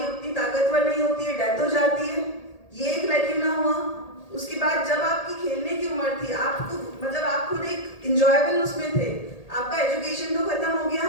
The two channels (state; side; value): late; right; 1.8 ms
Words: उतनी ताकतवर नहीं होती है, डेथ हो जाती है। ये एक लैक्यूना हुआ। उसके बाद जब आपकी खेलने की उम्र थी, आपको मतलब आप खुद एक इंजॉयबल उसमें थे, आपका एजुकेशन तो खत्म हो गया,